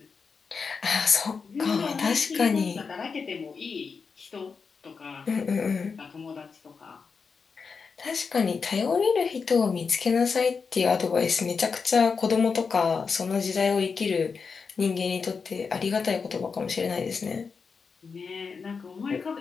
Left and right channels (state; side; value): quieter; right; 5.3 dB